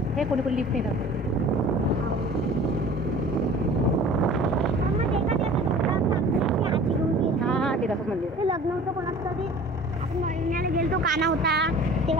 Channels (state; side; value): normal; both; correlation 0.44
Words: हे कोणी कोणी लिफ्ट येतात. हां ते दाखव मंदिर. ते लग्न होतं कोणाचं तरी आपण महिन्याला गेलतो काना होता